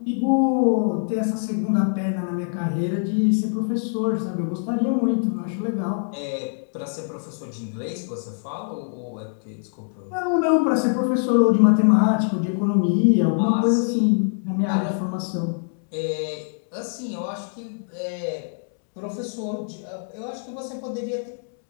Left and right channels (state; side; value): silent; right; digital silence